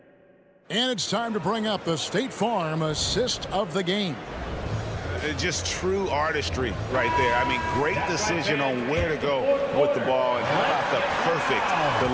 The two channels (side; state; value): both; identical; correlation 1.00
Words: And it's time to bring up the State Farm assist of the game. Just true artistry right there. I mean, great decision on where to go with the ball, and how about the perfect